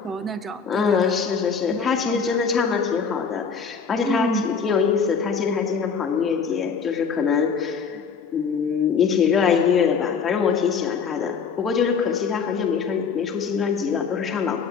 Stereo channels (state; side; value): quieter; right; 5.9 dB